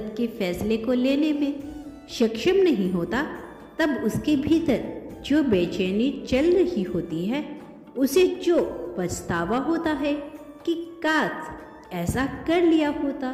के फैसले को लेने में सक्षम नहीं होता, तब उसके भीतर जो बेचैनी चल रही होती है, उसे जो पछतावा होता है कि काश ऐसा कर लिया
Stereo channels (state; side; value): identical; both; correlation 1.00